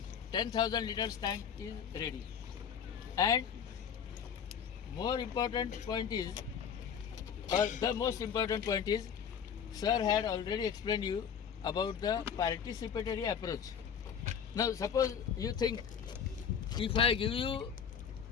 10,000 liters tank is ready. And more important point is, or the most important point is, sir had already explained you about the participatory approach. Now suppose you think, if I give you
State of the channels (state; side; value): quieter; right; 7.7 dB